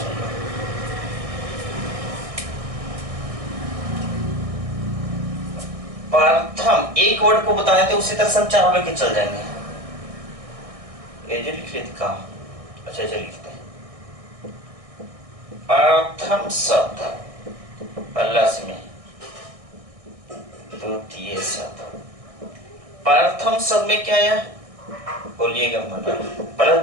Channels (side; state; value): left; late; 1.6 ms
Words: प्रथम एक वर्ड को बता देते उसी तरह से हम चार लेके चल जाएंगे। ये जो लिख लेते कहा, अच्छा चलिए लिखते हैं। प्रथम शब्द प्लस में द्वितीय शब्द। प्रथम शब्द में क्या आया, बोलिएगा मना। प्लस